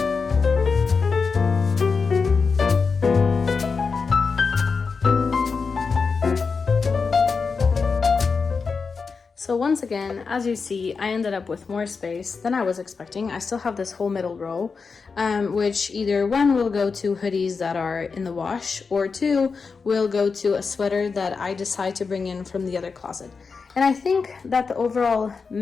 So once again, as you see, I ended up with more space than I was expecting. I still have this whole middle row, which either 1 will go to hoodies that are in the wash, or 2 will go to a sweater that I decide to bring in from the other closet. And I think that the overall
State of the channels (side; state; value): right; quieter; 5.0 dB